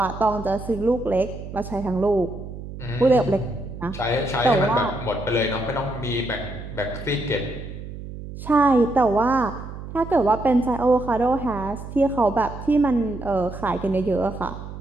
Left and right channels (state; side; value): noise; right; hum, 11 dB below the sound